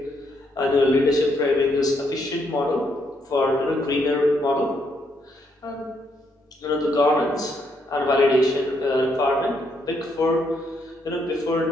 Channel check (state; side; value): normal; both; correlation 0.75